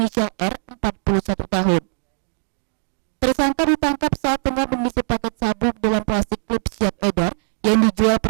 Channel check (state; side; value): silent; left; digital silence